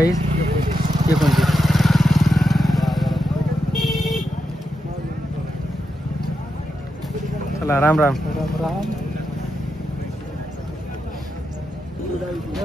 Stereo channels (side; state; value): both; normal; correlation 0.86